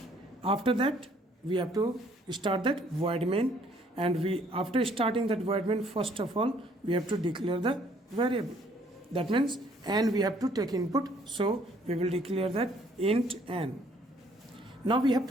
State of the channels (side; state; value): both; normal; correlation 0.62